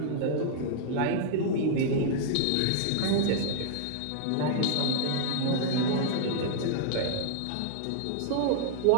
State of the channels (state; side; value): different; both; correlation -0.01